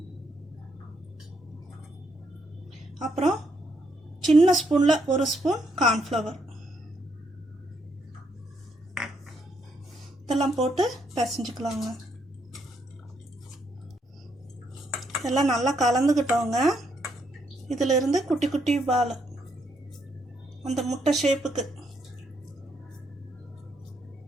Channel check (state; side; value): normal; both; correlation 0.75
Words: அப்புறம் சின்ன ஸ்பூனில் 1 ஸ்பூன் கார்ன்ஃப்ளவர் இதெல்லாம் போட்டு பிசைஞ்சுக்கலாங்க. இதெல்லாம் நல்லா கலந்துக்கிட்டோங்க. இதிலிருந்து குட்டி குட்டி பால் அந்த முட்டை ஷேப்புக்கு